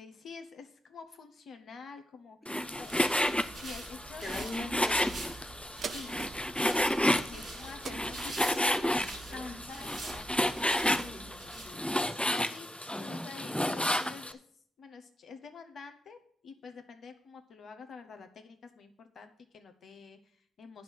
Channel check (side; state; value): both; normal; correlation 0.84